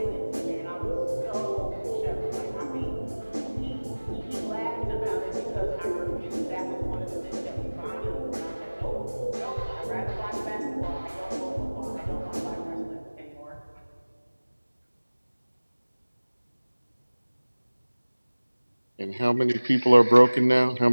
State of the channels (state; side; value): inverted; both; correlation -1.00